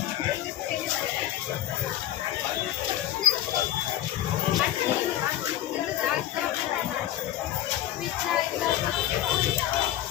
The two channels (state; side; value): quieter; right; 13.0 dB